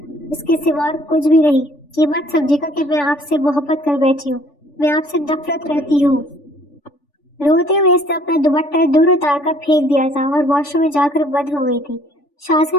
اس کے سوا اور کچھ بھی نہیں۔ یہ مت سمجھے گا کہ میں آپ سے محبت کر بیٹھی ہوں، میں آپ سے نفرت کرتی ہوں۔ روتے ہوئے اس نے اپنا دوپٹہ دور اتار کر پھینک دیا تھا اور واش روم میں جا کر بند ہو گئی تھی۔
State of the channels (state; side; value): late; right; 3.5 ms